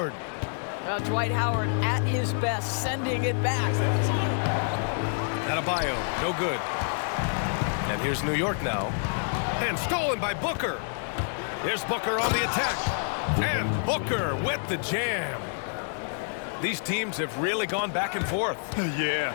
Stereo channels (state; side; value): silent; right; 60 dB below the other